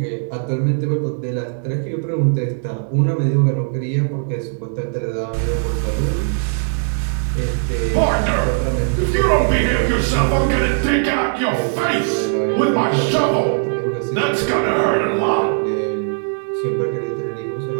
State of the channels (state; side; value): silent; left; 66 dB below the other